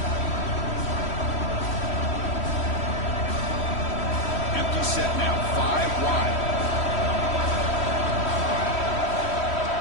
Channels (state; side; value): late; right; 3.1 ms